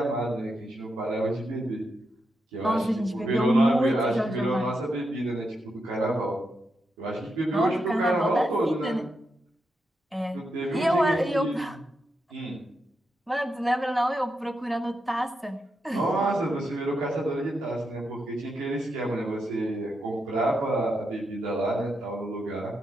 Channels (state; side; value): normal; both; correlation 0.84